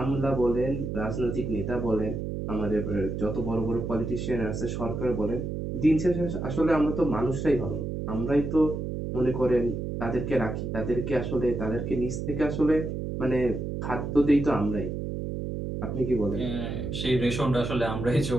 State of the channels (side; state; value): right; noise; hum, 4 dB below the sound